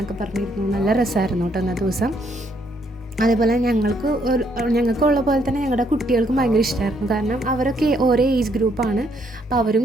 പറഞ്ഞിരുന്നു. നല്ല രസമായിരുന്നു കേട്ടോ അന്നത്തെ ദിവസം. അതേപോലെ ഞങ്ങൾക്കുള്ള പോലെ തന്നെ ഞങ്ങളുടെ കുട്ടികൾക്കും ഭയങ്കര ഇഷ്ടമായിരുന്നു. കാരണം അവരൊക്കെ ഓരോ ഏജ് ഗ്രൂപ്പാണ്. അപ്പോൾ അവരും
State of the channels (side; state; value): both; normal; correlation 0.71